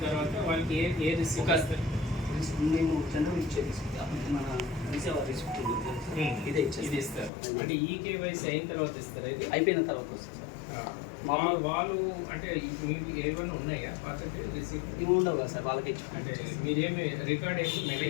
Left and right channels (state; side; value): drops out; right; at 7.3 s